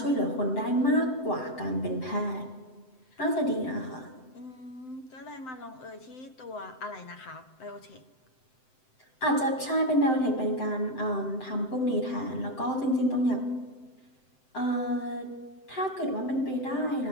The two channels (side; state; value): right; late; 7.8 ms